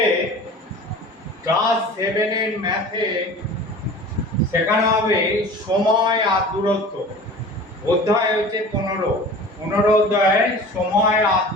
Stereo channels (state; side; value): normal; both; correlation 0.40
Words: ক্লাস 7 এর ম্যাথে শেখানো হবে সময় আর দূরত্ব। অধ্যায় হচ্ছে 15 অধ্যায়ে সময় আর